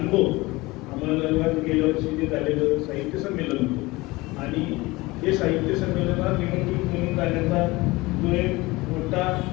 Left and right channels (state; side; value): quieter; right; 21.7 dB